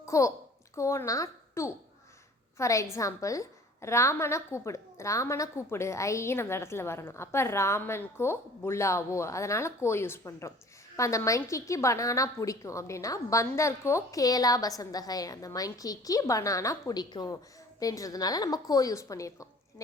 கோனா டூ. ஃபார் எக்ஸாம்பிள், ராமனை கூப்பிடு ஐன்னு அந்த இடத்துல வரணும். அப்போ ராமன் கோ புல்லாவோ, அதனால் கோ யூஸ் பண்ணுறோம். இப்போ அந்த மங்கிக்கு பனானா பிடிக்கும் அப்படின்னா பந்தர் கோ கேலா பசந்தகை, அந்த மங்கிக்கு பனானா பிடிக்கும் அப்படின்றதுனால நம்ம கோ யூஸ் பண்ணியிருக்கோம்.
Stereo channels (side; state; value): both; normal; correlation 0.48